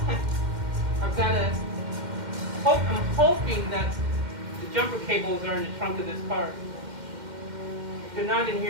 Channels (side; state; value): left; late; 2.1 ms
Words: I'm hoping that the jumper cables are in the trunk of this car. If they're not in